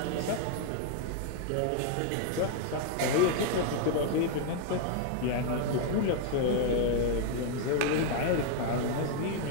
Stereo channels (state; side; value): different; both; correlation 0.00